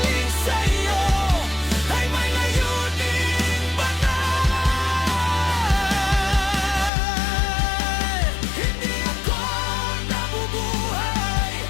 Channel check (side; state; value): right; drops out; at 6.9 s